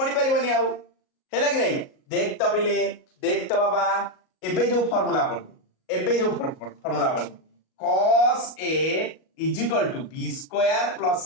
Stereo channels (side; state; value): right; late; 38 ms